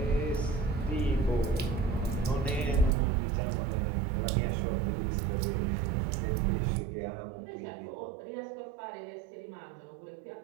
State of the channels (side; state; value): left; drops out; at 2.9 s